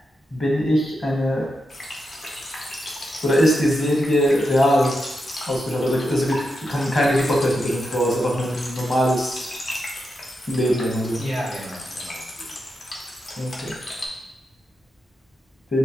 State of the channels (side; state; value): both; normal; correlation 0.87